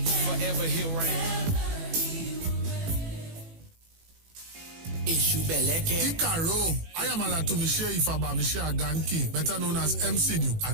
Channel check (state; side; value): late; left; 18 ms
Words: Forever he'll reign. Ikaro, I am Alatumishe Ifaba Mishe Aganki, better known as MCD,